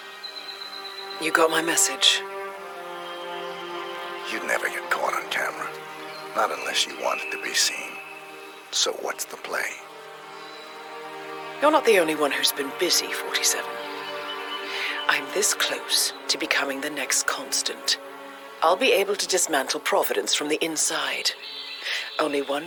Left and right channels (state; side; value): identical; both; correlation 1.00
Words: You got my message. You'd never get caught on camera. Not unless you wanted to be seen. So what's the play? You're not the only one who's been busy, 47. I'm this close to becoming the next Constant. I'll be able to dismantle Providence from the inside. Only